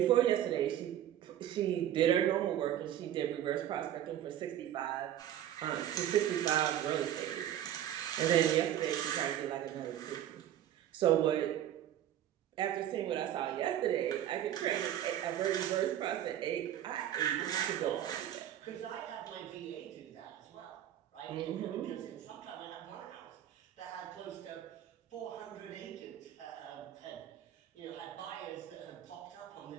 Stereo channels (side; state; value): left; quieter; 11.4 dB